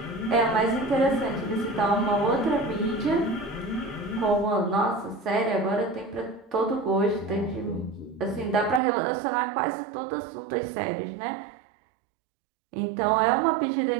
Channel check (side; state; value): left; drops out; at 8.8 s